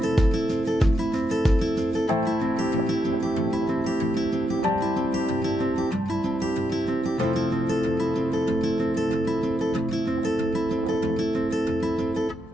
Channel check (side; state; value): both; normal; correlation 0.82